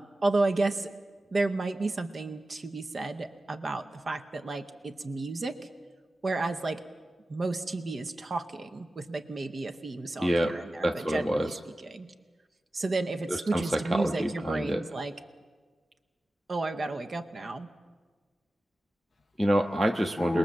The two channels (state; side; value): normal; both; correlation 0.95